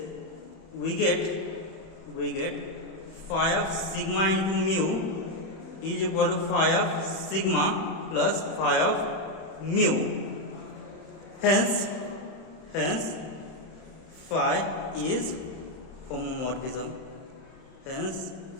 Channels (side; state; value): right; late; 31 ms